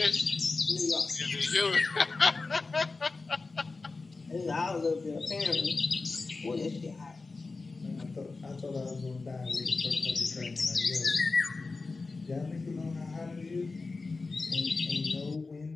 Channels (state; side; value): quieter; right; 3.8 dB